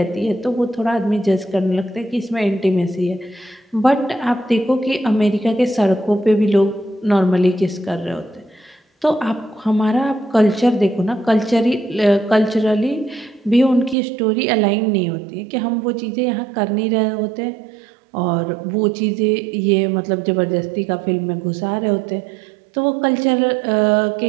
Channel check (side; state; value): left; drops out; at 14.0 s